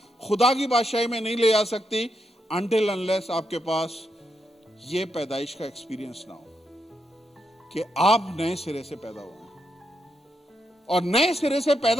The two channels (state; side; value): normal; both; correlation 0.82